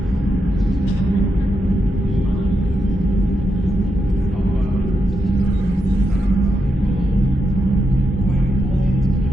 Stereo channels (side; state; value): both; normal; correlation 0.85